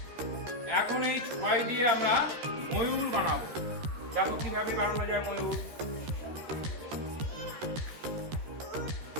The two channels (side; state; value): left; late; 13 ms